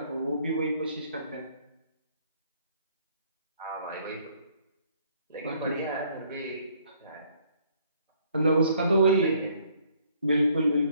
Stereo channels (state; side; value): inverted; both; correlation -0.64